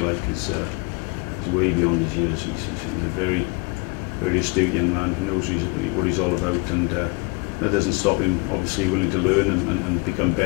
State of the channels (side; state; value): right; quieter; 29.5 dB